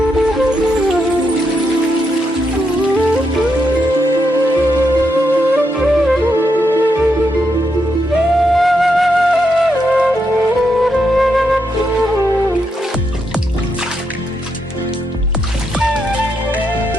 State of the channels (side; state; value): both; normal; correlation 0.81